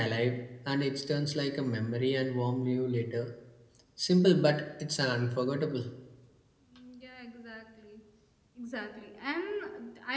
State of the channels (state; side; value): identical; both; correlation 1.00